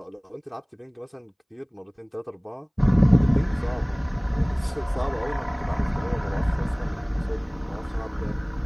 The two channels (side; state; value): both; identical; correlation 1.00